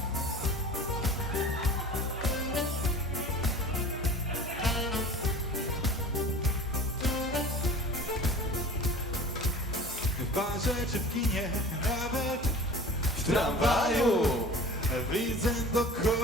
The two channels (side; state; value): both; normal; correlation 0.41